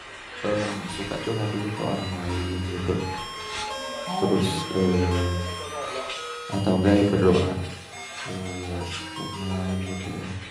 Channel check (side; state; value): both; identical; correlation 1.00